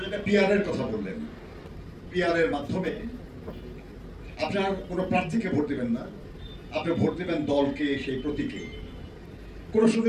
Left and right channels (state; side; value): identical; both; correlation 1.00